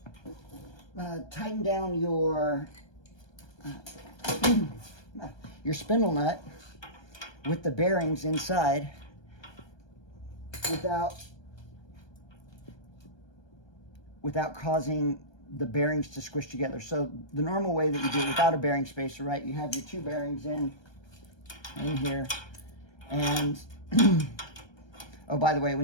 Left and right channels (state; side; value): late; right; 1.3 ms